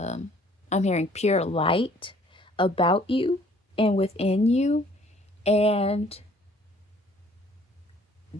hearing pure light about you and within you, and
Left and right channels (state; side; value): normal; both; correlation 0.58